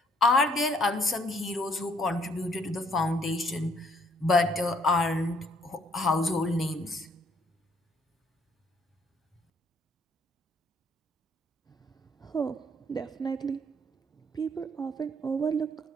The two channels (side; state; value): both; normal; correlation 0.65